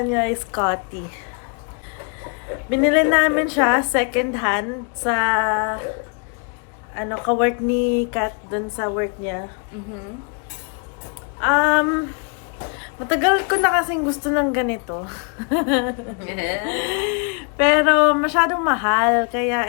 niya ay Scotty. Binili namin siya second hand sa ka-work ni Kat dun sa work niya. Matagal ko na kasing gusto ng ganito. Pero masyadong mahal,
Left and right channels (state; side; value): quieter; right; 38.2 dB